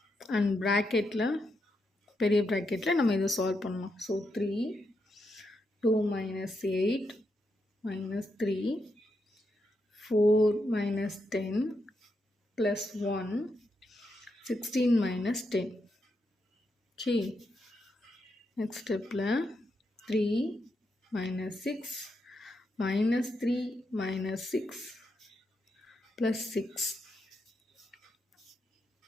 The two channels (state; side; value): normal; both; correlation 0.83